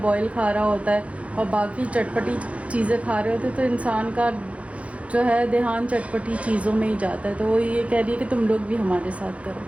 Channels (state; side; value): late; left; 0.064 ms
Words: बॉयल खा रहा होता है और बाकी चटपटी चीज़ें खा रहे होते, तो इंसान का जो है ध्यान चटपटी चीज़ों में ही जाता है। तो वो ये कह रही है कि तुम लोग भी हमारे साथ करो।